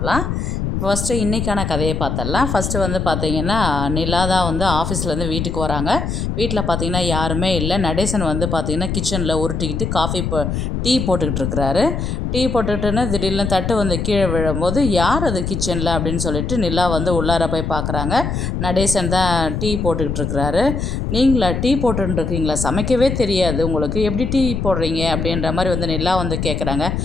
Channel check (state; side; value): noise; left; rumble, 2 dB below the sound